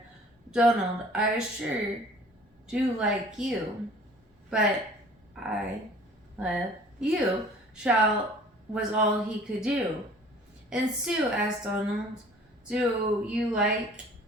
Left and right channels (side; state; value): both; normal; correlation 0.50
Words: Donald, I sure do like you, but I love you, Shel was all he could do. And Sue asked Donald, do you like